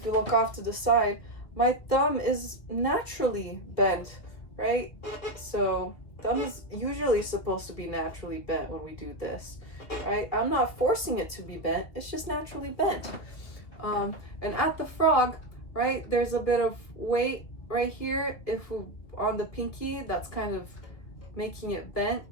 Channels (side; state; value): right; late; 2.2 ms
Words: you look off to the side, my thumb is naturally bent, right? So thumb is usually supposed to be naturally bent when we do this, right? I'm not forcing it to be bent. It's just naturally bent. And at the frog, right, there's a bit of weight right here. If we, on the pinky, that's kind of making it bent